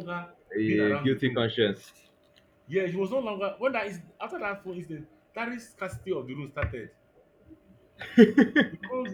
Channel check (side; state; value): both; identical; correlation 1.00